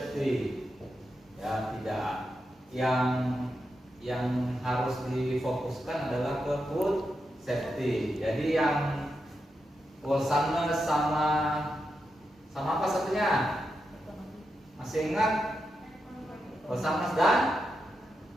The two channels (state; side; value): normal; both; correlation 0.87